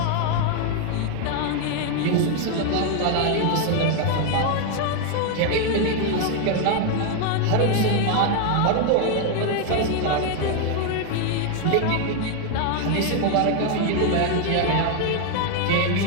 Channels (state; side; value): different; both; correlation 0.01